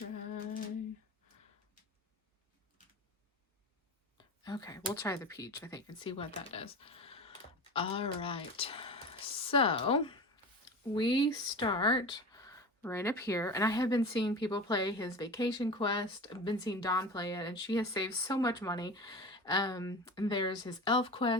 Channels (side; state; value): both; normal; correlation 0.31